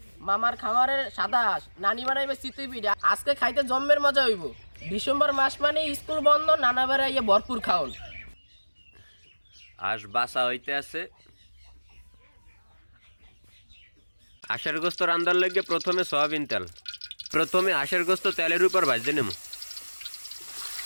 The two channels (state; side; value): inverted; both; correlation -1.00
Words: মামার খামারের সাদা হাঁস, নানি বানাইবে চিতুই পিঠা, আজকে খাইতে জম্মের মজা হইব। ডিসেম্বর মাস মানে স্কুল বন্ধ, নানা বেড়াইয়ে ভরপুর খাওন। হাঁস বাসা হইতে আছে। হাঁসের গোস্ত রান্দার লেগে প্রথমে সয়াবিন তেল, প্রথমে হাঁসের গোস্ত তেলের উপর ভাজতে নেব।